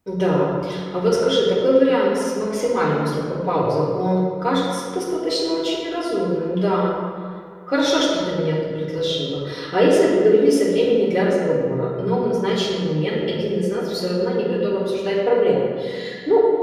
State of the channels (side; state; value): both; identical; correlation 1.00